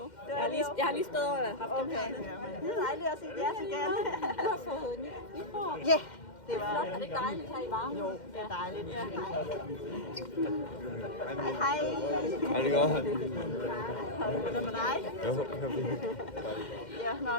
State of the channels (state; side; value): late; right; 2.1 ms